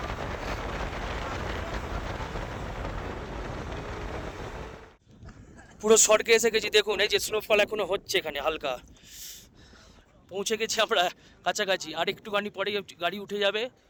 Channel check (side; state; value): both; identical; correlation 1.00